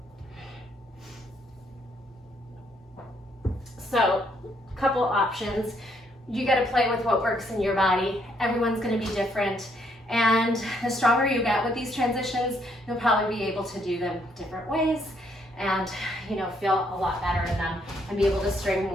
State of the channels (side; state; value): both; normal; correlation 0.71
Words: So, couple options. You got to play with what works in your body. Everyone's going to be different. And the stronger you get with these transitions, you'll probably be able to do them different ways and, you know, feel a lot better in them and be able to string